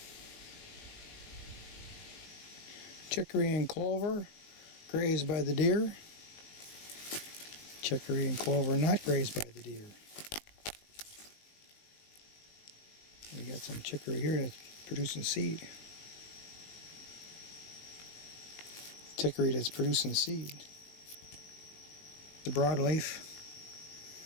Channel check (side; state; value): right; late; 19 ms